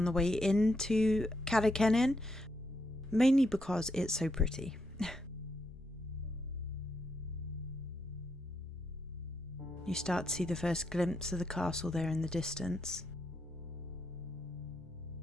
the way into Carreg Cennen, mainly because it's so pretty. You start to see the first glimpse of the castle there in the distance.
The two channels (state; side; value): normal; both; correlation 0.79